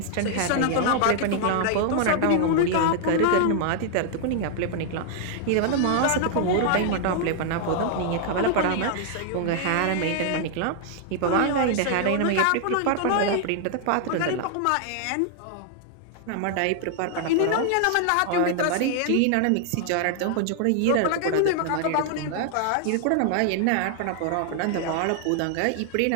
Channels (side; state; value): both; different; correlation 0.00